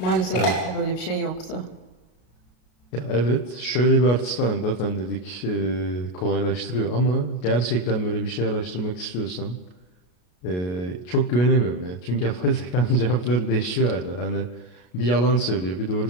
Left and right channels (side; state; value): right; late; 33 ms